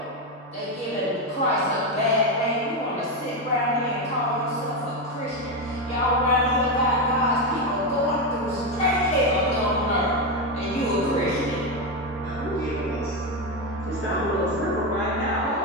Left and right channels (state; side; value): normal; both; correlation 0.09